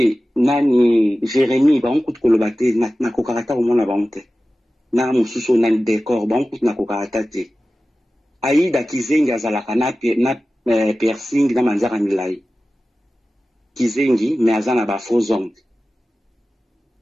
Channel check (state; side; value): normal; both; correlation 0.95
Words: nani Jérémie ba on ko lobate na ko karata au mona ba onte. Na mususu na décor ba on na ko karata te. Aïda Kizengi azalaka na piercing na manzara milai. Kizengi mais azana ba faux hommes.